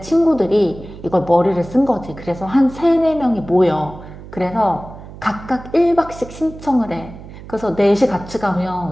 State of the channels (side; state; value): right; noise; hum, 15 dB below the sound